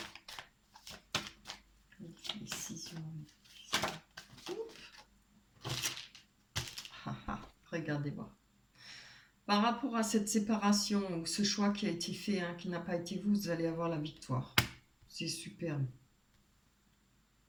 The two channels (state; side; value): identical; both; correlation 1.00